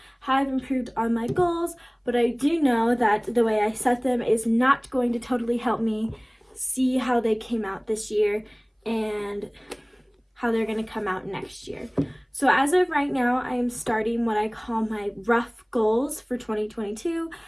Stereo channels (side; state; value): both; identical; correlation 1.00